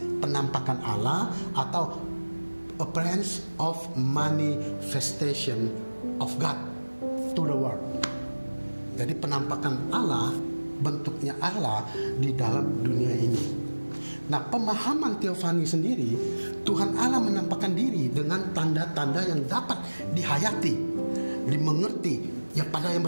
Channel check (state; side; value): inverted; both; correlation -1.00